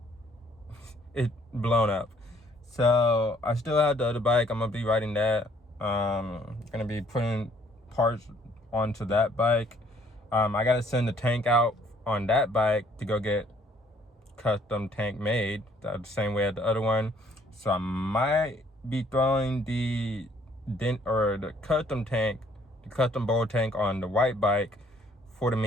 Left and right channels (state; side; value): normal; both; correlation 0.63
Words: is blown up. So, I still have the other bike. I'm going to be riding that. Going to be putting parts onto that bike. I got to send the tank out on that bike to go get custom tank made the same way as the other one, so I might be throwing the custom bowl tank on the white bike for the